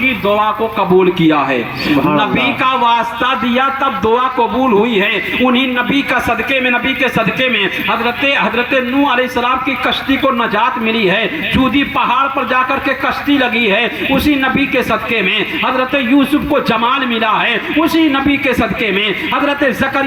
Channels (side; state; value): both; identical; correlation 1.00